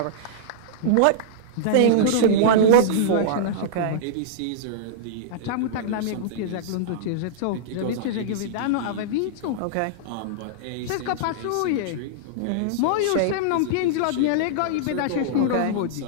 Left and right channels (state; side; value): different; both; correlation -0.02